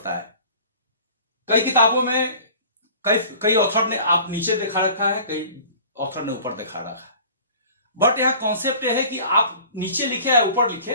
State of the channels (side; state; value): both; inverted; correlation -0.45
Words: है। कई किताबों में कई ऑथर ने आप नीचे दिखा रखा है, कई ऑथर ने ऊपर दिखा रखा है, बट यहां कॉन्सेप्ट यह है कि आप नीचे लिखे या ऊपर लिखे